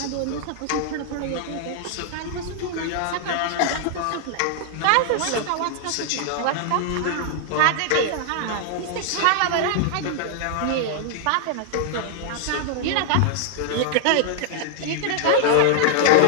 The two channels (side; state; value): both; different; correlation -0.01